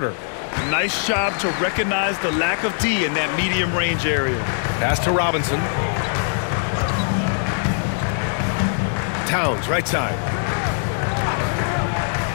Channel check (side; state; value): right; silent; digital silence